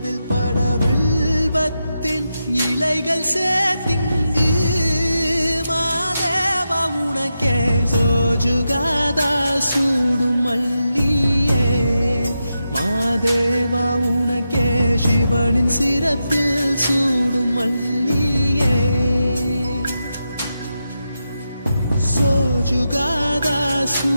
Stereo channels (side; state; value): both; inverted; correlation -0.88